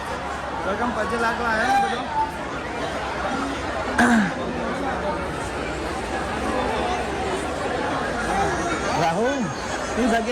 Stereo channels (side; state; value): both; identical; correlation 1.00